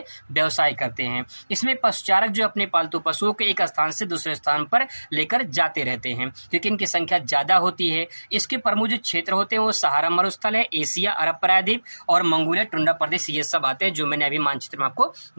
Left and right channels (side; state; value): both; inverted; correlation -1.00